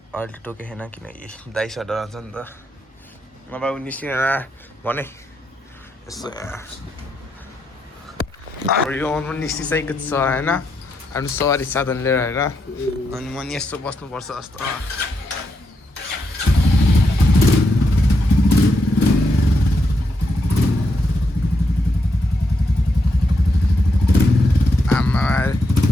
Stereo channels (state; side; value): normal; both; correlation 0.81